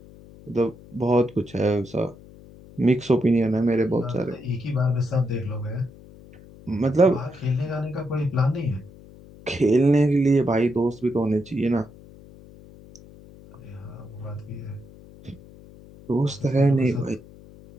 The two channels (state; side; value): noise; left; hum, 21 dB below the sound